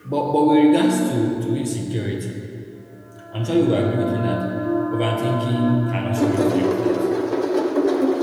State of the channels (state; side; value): identical; both; correlation 1.00